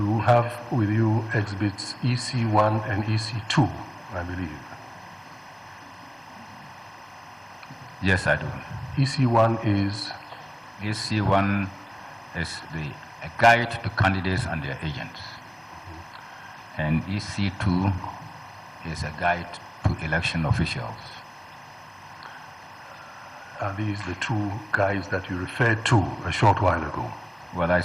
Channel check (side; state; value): both; identical; correlation 1.00